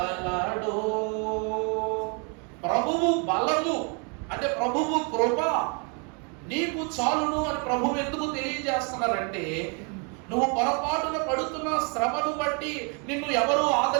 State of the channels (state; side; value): quieter; left; 35.9 dB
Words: ప్రభువు బలము అంటే ప్రభువు కృప నీకు చాలును అని ప్రభువు ఎందుకు తెలియజేస్తున్నారంటే, నువ్వు పొరపాటున పడుతున్న శ్రమను బట్టి నిన్ను ఎవరు